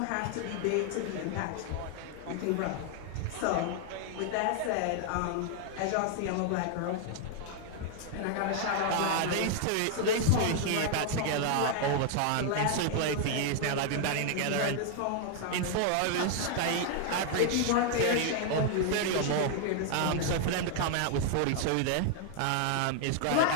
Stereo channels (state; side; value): different; both; correlation 0.00